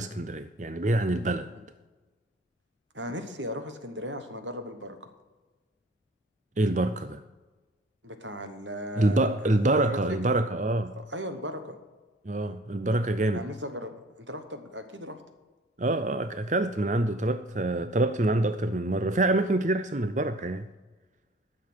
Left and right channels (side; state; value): both; normal; correlation 0.51